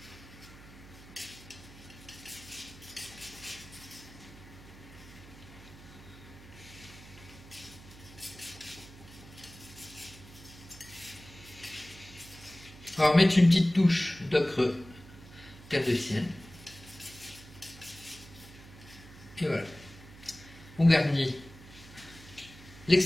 On va remettre une petite touche d'ocre terre de sienne. Et voilà. On garnit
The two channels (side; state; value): right; noise; hum, 19 dB below the sound